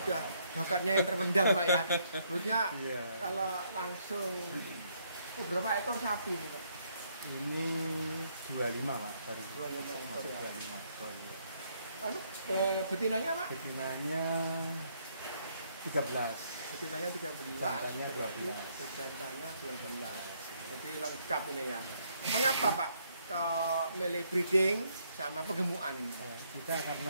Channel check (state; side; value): inverted; both; correlation -0.71